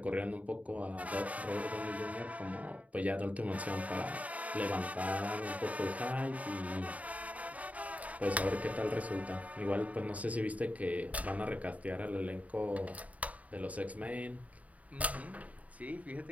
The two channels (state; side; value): late; left; 0.070 ms